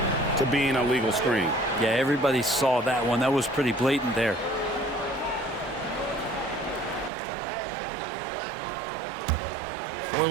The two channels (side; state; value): left; drops out; at 7.1 s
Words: to being a legal screen. Yeah, everybody saw that one. That was pretty blatant there. For